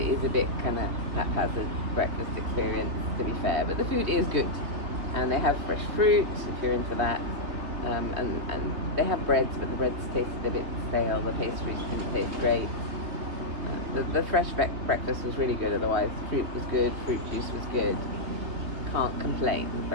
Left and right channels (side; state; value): left; late; 3.2 ms